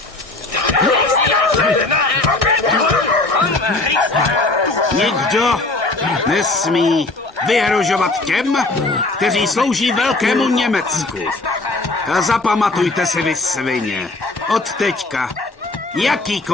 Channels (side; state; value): right; quieter; 3.1 dB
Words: Nikdo nesmí vyhrožovat těm, kteří slouží velkému Německu. A zapamatujte si, vy svině, od teďka